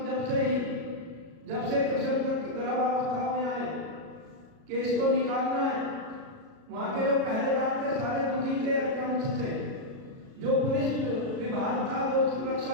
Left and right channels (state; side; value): late; left; 37 ms